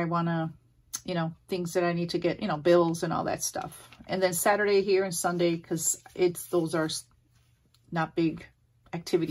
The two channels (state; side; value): identical; both; correlation 1.00